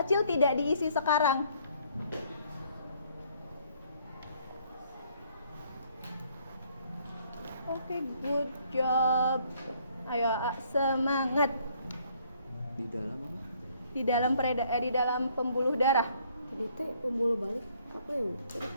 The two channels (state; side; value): inverted; both; correlation -0.64